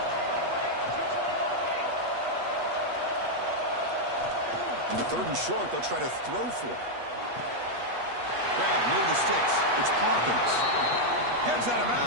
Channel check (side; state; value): left; late; 8.3 ms